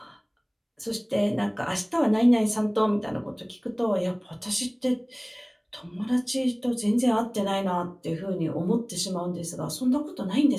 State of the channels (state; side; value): identical; both; correlation 1.00